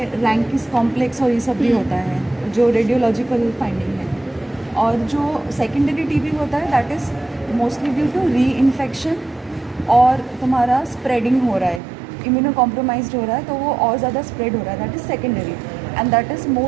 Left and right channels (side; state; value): left; drops out; at 11.8 s